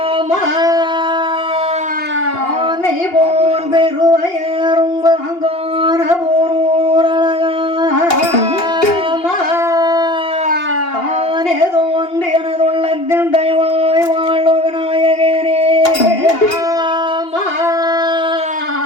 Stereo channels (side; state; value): right; late; 2.8 ms